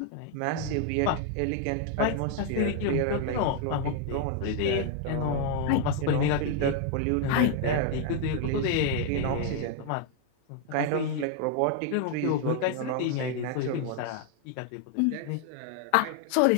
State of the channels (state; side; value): different; both; correlation 0.00